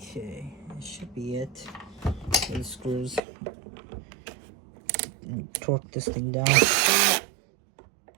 Okay, that should be it. The screws. Torque this thing down. There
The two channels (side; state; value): left; drops out; at 3.2 s